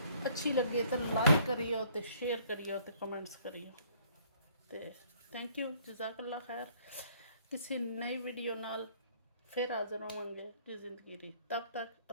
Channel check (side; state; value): both; inverted; correlation -0.61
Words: अच्छी लगे तो लाइक करियो, तो शेयर करियो, तो कमेंट्स करियो। तो थैंक यू, जज़ाकल्ला खैर। किसी नई वीडियो नाल फिर हाज़िर होवांगे जी ज़िंदगी दी। तब तक